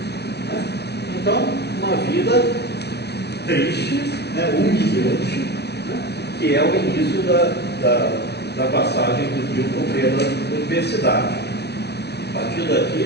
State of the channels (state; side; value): late; right; 0.48 ms